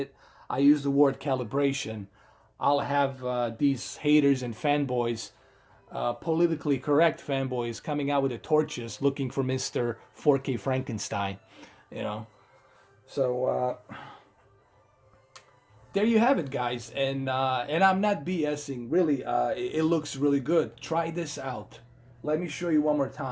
I use the word calibration. I'll have these haters and fanboys, politically correct fanboys, coming out with the torches looking for Mr. 4K Frankenstein, you know. So there you have it, guys, and I'm not BSing. Really, it looks really good. Try this out. Let me show you one more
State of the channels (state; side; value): identical; both; correlation 1.00